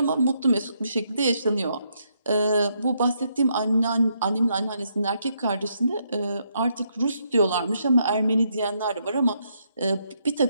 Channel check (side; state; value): both; inverted; correlation -0.76